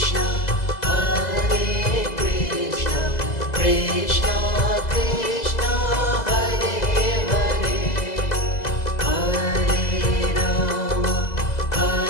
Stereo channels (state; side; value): late; right; 2.0 ms